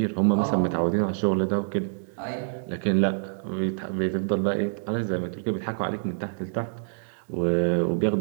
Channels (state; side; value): silent; left; digital silence